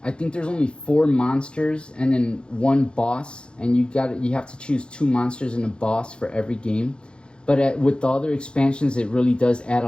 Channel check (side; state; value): right; late; 0.054 ms